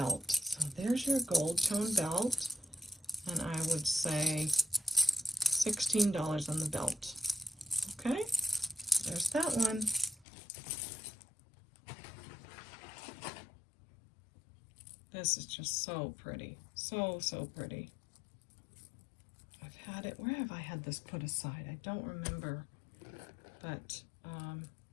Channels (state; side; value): drops out; right; at 10.2 s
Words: So there's your gold tone belt, and I would say $16 on the belt. Okay, there's that one. This is just so pretty, so pretty. I've had it, where have I had this put aside? I don't remember, but